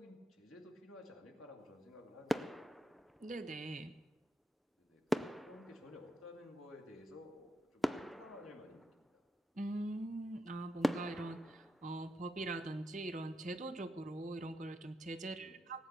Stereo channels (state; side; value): normal; both; correlation 0.85